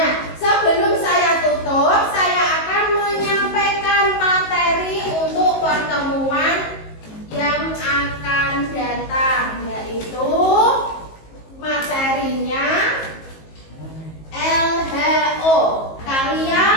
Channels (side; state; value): right; late; 19 ms